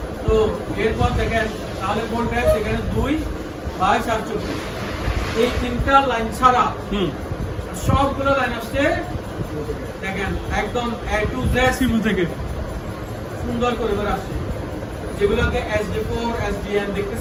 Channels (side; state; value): both; identical; correlation 1.00